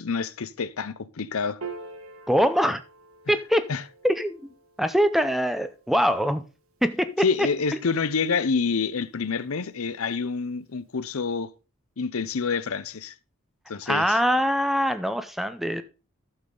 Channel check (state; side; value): normal; both; correlation 0.59